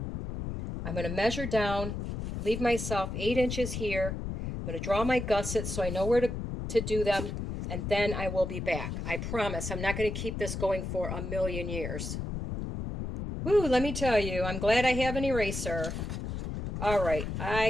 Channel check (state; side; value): noise; left; rumble, 5 dB below the sound